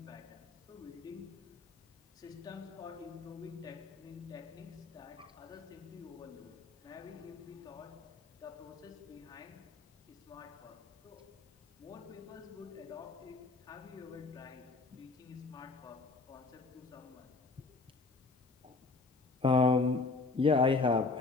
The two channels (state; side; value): quieter; right; 3.9 dB